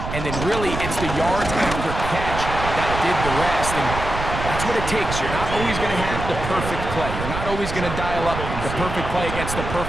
and then really it's the yards after catch that did the rest. And that's what it takes. You're not always going to have the perfect play. You're not always going to dial up the perfect play against the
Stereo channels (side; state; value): right; noise; rumble, 6 dB below the sound